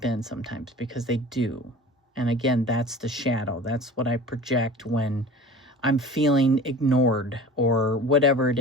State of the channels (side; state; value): both; normal; correlation 0.39